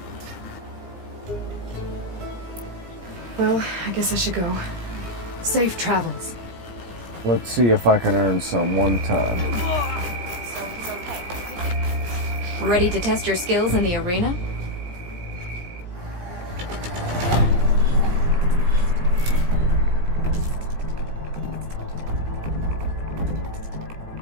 Well, I guess I should go. Safe travels. Let's see if I can earn some one time. Ready to test your skills in the arena?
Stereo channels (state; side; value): late; left; 17 ms